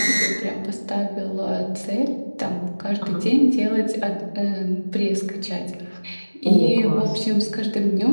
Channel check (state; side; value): inverted; both; correlation -1.00